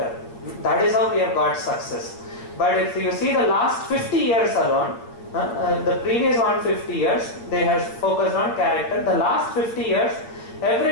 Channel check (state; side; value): late; right; 8.5 ms